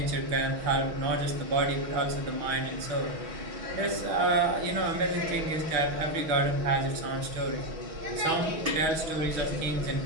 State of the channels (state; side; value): late; left; 6.2 ms